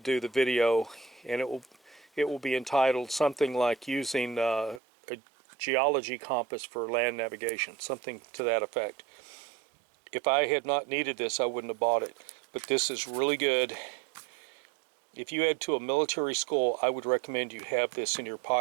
the video, and it will be entitled something like using a geology compass for land navigation, something to that effect. If I had not needed this, I wouldn't have bought it. But this is really good. If you head to a military school, I would recommend you have this in your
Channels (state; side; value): drops out; left; at 4.8 s